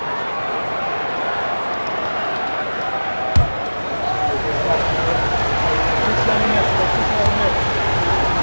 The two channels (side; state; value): both; inverted; correlation -1.00